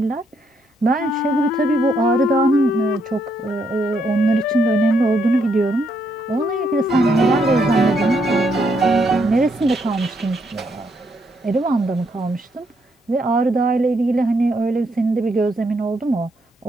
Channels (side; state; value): both; normal; correlation 0.75